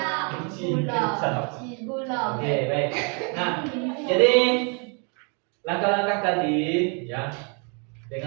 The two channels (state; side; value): quieter; left; 36.8 dB